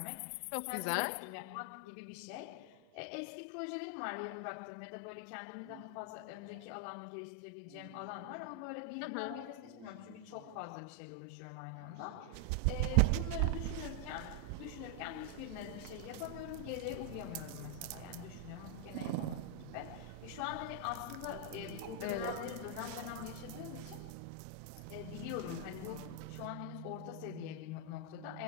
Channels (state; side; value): different; both; correlation 0.00